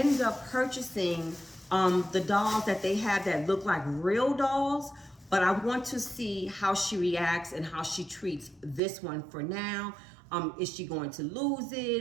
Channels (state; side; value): drops out; left; at 8.8 s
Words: up purchasing the dolls that they have that look like real dolls, but I want to see how she reacts and how she treats this one for now. Is she going to lose